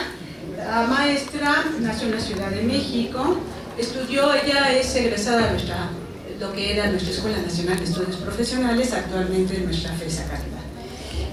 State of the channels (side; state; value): both; identical; correlation 1.00